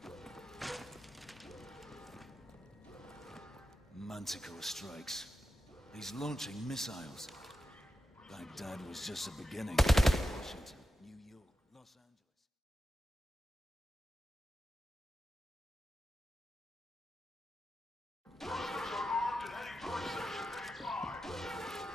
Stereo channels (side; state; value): both; normal; correlation 0.90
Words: Manticore strikes. He's launching missiles. Baghdad was just the beginning. Washington, New York, Los Angeles.